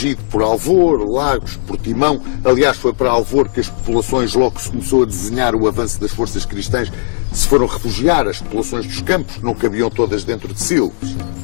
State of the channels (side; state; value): right; silent; digital silence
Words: por Alvor, Lagos, Portimão. Aliás, foi para Alvor que as populações, logo que se começou a desenhar o avanço das forças cristãs, se foram refugiar. As populações dos campos não cabiam todas dentro de Silves.